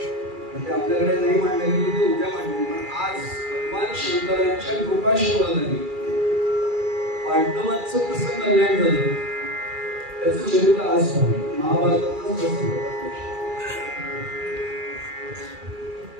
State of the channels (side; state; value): left; late; 2.3 ms